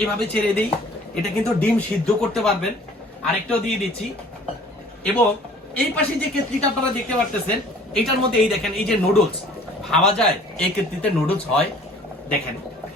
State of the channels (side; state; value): both; normal; correlation 0.51